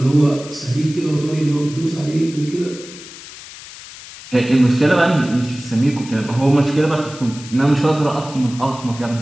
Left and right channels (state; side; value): noise; left; hiss, 16 dB below the sound